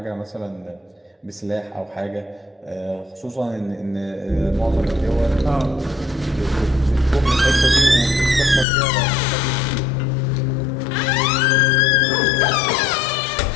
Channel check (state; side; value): drops out; right; at 8.7 s